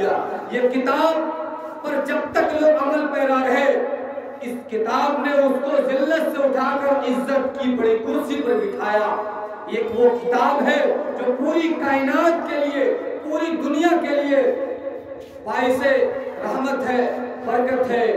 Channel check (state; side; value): identical; both; correlation 1.00